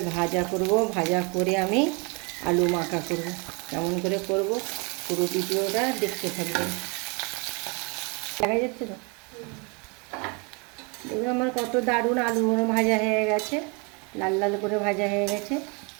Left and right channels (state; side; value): quieter; left; 31.8 dB